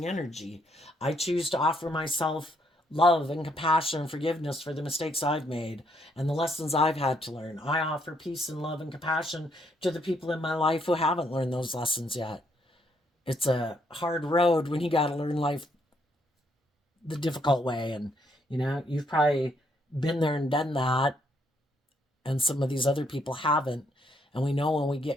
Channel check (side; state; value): both; normal; correlation 0.72